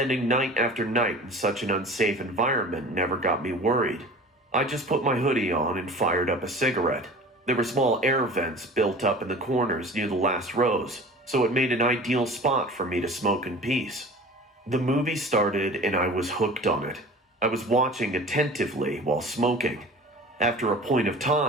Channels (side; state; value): both; normal; correlation 0.40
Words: night after night in such an unsafe environment never got me worried. I just put my hoodie on and fired up a cigarette. There were small air vents built up in the corners near the last rows, so it made an ideal spot for me to smoke in peace. The movie started and I was hooked on it. I was watching attentively while smoking. After a point of